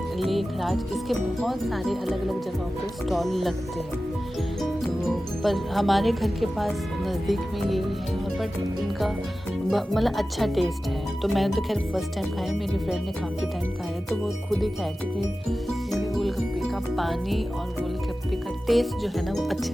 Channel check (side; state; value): both; normal; correlation 0.95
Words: लेखराज, इसके बहुत सारे अलग अलग जगहों पे स्टॉल लगते हैं। तो पर हमारे घर के पास नज़दीक में ये है, और बट इनका मतलब अच्छा टेस्ट है। तो मैंने तो खैर फर्स्ट टाइम खाया, मेरी फ्रेंड ने काफ़ी टाइम खाया, तो वो खुद ही कहा थी कि इनके गोलगप्पे का पानी और गोलगप्पे का टेस्ट जो है ना वो अच्छा